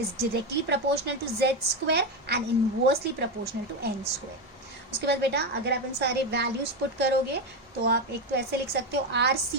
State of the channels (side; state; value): both; normal; correlation 0.12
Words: directly proportional to z² and inversely proportional to n²। उसके बाद बेटा अगर आप इन सारे values put करोगे तो आप एक तो ऐसे लिख सकते हो